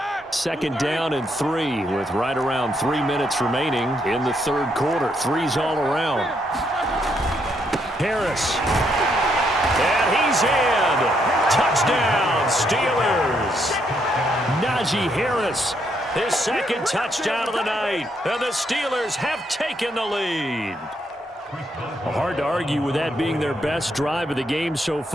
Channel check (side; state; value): both; normal; correlation 0.75